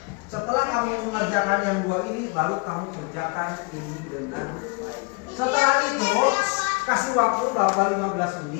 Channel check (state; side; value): quieter; right; 29.7 dB